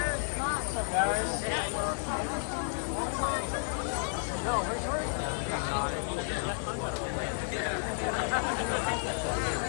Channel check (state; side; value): silent; right; 57 dB below the other